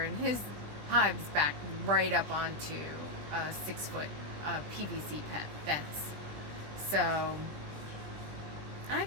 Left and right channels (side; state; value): left; late; 20 ms